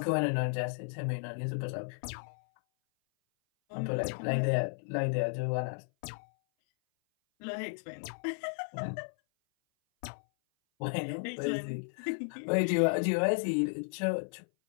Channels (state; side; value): silent; right; 55 dB below the other